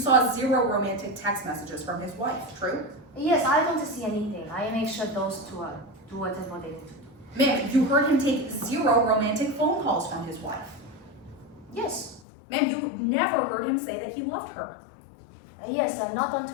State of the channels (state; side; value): drops out; right; at 12.2 s